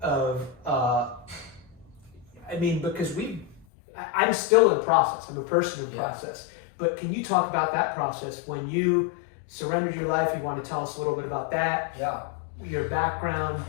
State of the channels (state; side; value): drops out; right; at 3.7 s